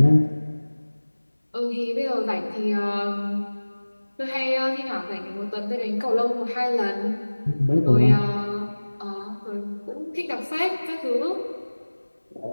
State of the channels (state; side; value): inverted; both; correlation -1.00